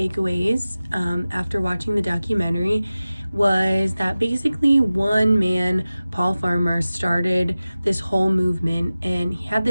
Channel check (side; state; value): both; inverted; correlation -0.96